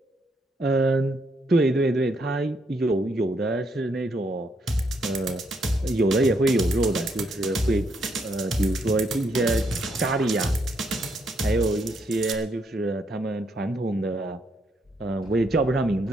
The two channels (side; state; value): both; normal; correlation 0.75